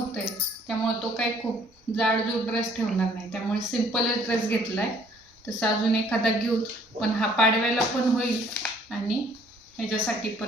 आहे, त्यामुळे तो काही खूप जाडजूड ड्रेस ठेवणार नाही, त्यामुळे सिम्पलच ड्रेस घेतला आहे. तसं अजून एखादा घेऊ, पण हा पाडव्याला पण होईल आणि ह्याच्यासाठी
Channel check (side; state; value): both; normal; correlation 0.60